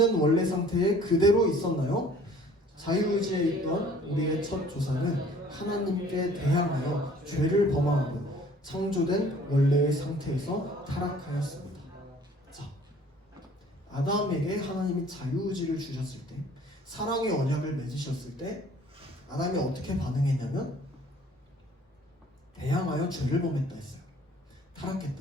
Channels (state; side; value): normal; both; correlation 0.53